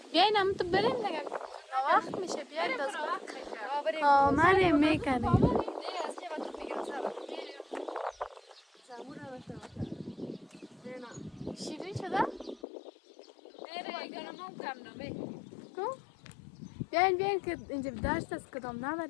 بیاین هم تو بریم دیگه، وقت میشه. بیاین باز بریم. آمده میکنیم. شیرین شده؟ بیاین که اینجا دشت است، کدام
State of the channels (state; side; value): drops out; right; at 12.6 s